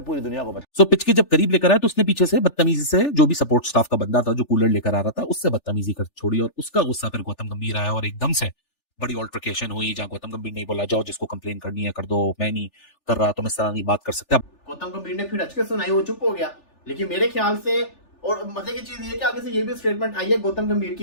पूरी दुनिया को सो पिच के जब करीब लेकर आया तो उसने पीछे से बदतमीजी से जो भी सपोर्ट स्टाफ का बंदा था जो कूलर लेकर आ रहा था उससे बदतमीजी कर छोड़ी, और उसका गुस्सा फिर गौतम गंभीर आया और एकदम से बड़ी ऑल्ट्रिकेशन हुई, जहां गौतम गंभीर ने बोला जाओ जिसको कंप्लेन करनी है कर दो, मैं नहीं कर रहा, तुम इस तरह नहीं बात कर सकते। गौतम गंभीर ने फिर अच के सुनाई, वो चुप हो गया। लेकिन मेरे ख्याल से, और मजे की चीज ये कि आगे से ये भी स्टेटमेंट आई है गौतम गंभीर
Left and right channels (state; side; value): late; right; 3.4 ms